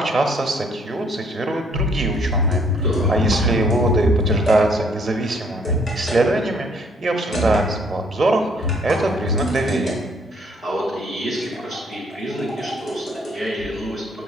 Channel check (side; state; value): both; normal; correlation 0.65